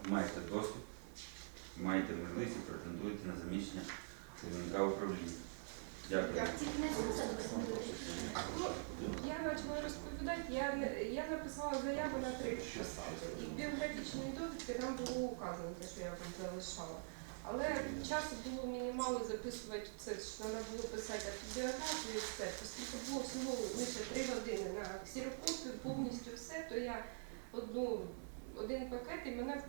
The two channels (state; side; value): silent; left; digital silence